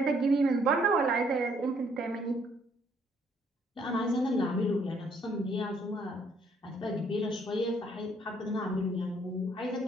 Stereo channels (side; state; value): both; normal; correlation 0.66